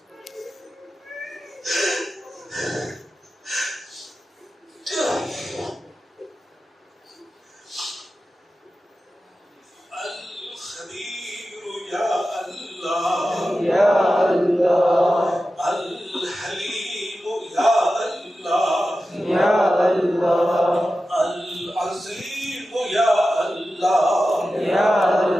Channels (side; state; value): both; normal; correlation 0.93